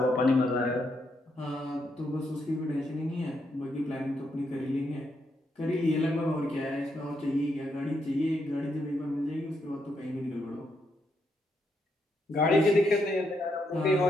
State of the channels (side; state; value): both; normal; correlation 0.79